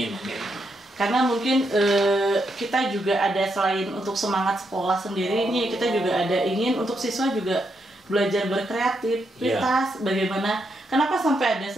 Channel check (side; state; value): both; normal; correlation 0.80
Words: Karena mungkin kita juga ada selain untuk semangat sekolah sendiri ini, kita juga ada ingin untuk siswa juga belajar berkreativitas. Bagaimana, kenapa sampai ada